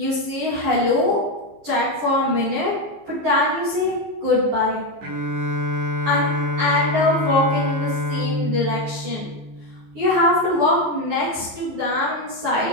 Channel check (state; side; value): late; left; 14 ms